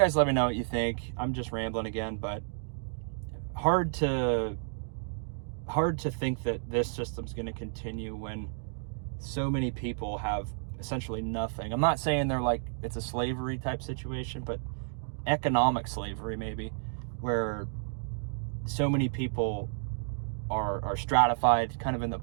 let me know what you think. I'm just rambling again, but hard to think that this system's going to continue when so many people have essentially nothing. I'm not saying they're like it's a slavery type situation, but economic slavery maybe, where so many people are stratified kind of in the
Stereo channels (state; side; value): silent; left; digital silence